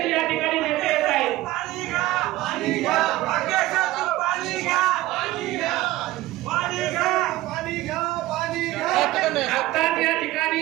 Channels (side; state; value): left; quieter; 17.1 dB